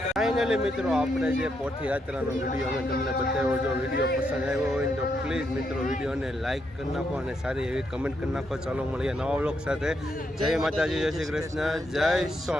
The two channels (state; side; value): normal; both; correlation 0.79